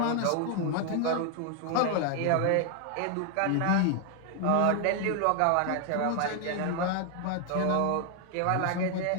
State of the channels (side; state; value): both; different; correlation 0.00